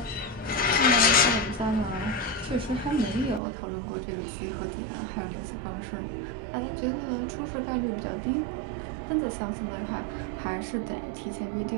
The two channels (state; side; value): drops out; left; at 3.4 s